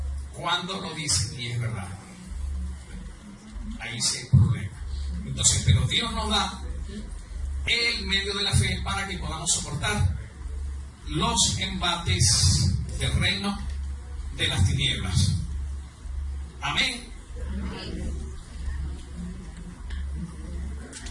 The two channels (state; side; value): identical; both; correlation 1.00